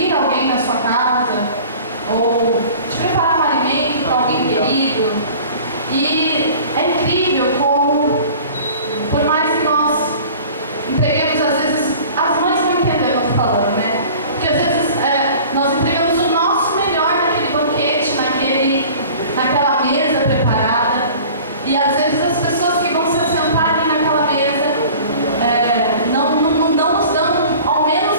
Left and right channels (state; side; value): inverted; both; correlation -0.44